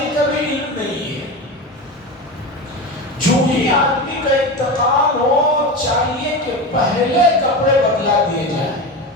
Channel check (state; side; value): normal; both; correlation 0.23